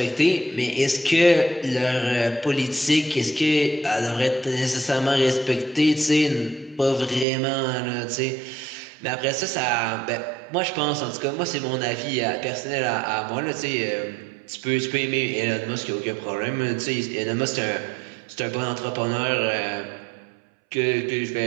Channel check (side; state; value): left; drops out; at 7.2 s